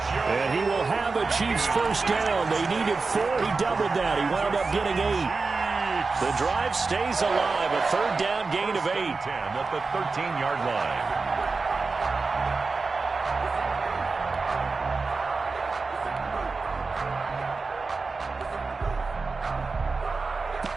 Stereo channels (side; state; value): left; quieter; 4.1 dB